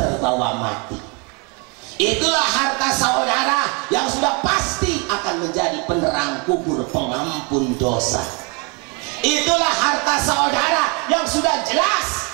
mati. Itulah harta saudara yang sudah pasti akan menjadi penerang kubur, pengampun dosa. Itulah harta saudara yang sudah jelas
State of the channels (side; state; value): left; quieter; 32.3 dB